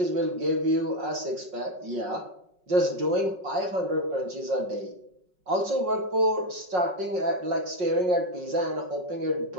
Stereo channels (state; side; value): late; left; 5.4 ms